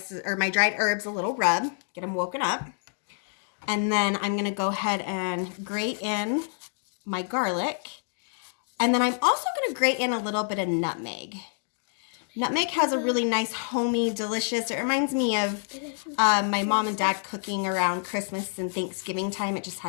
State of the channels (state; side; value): silent; right; digital silence